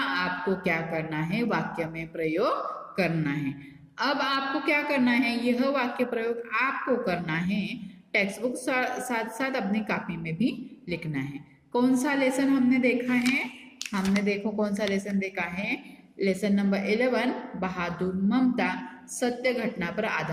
क्या करना है, वाक्य में प्रयोग करना है। अब आपको क्या करना है, यह वाक्य प्रयोग आपको करना है, टेक्स्ट बुक साथ साथ अपनी कॉपी में भी लिखना है। कौन सा लेसन हमने देखा है, हमने देखो कौन सा लेसन देखा है, लेसन नंबर 11 बहादुर ममता सत्य घटना पर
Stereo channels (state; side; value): identical; both; correlation 1.00